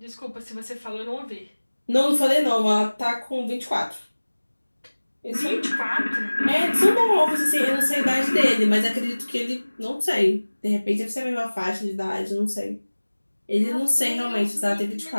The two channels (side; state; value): both; inverted; correlation -1.00